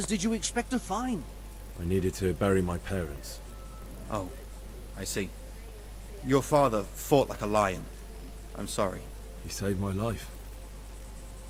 did you expect to find? I needed to bury my parents. Oh, I see. Your father fought like a lion. I'm sorry. He saved my life.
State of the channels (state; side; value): identical; both; correlation 1.00